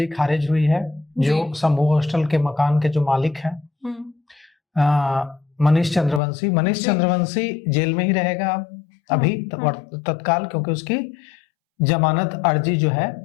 खारिज हुई है, जो संभू हॉस्टल के मकान के जो मालिक हैं मनीष चंद्रवंशी जेल में ही रहेगा अभी तत्काल, क्योंकि उसकी जमानत अर्जी जो है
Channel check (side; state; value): right; drops out; at 6.2 s